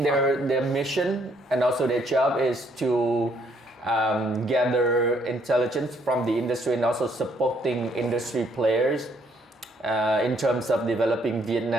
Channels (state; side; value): normal; both; correlation 0.68